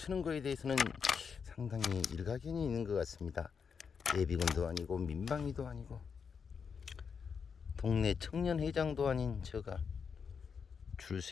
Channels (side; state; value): right; quieter; 6.2 dB